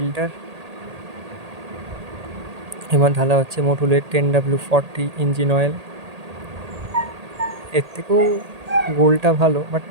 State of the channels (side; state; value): left; late; 1.8 ms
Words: এবার ঢালা হচ্ছে মোটুলের 10W40 ইঞ্জিন অয়েল। এর থেকেও গোলটা ভালো, বাট